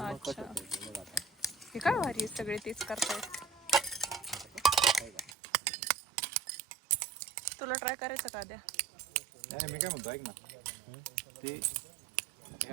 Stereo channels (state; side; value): drops out; left; at 5.3 s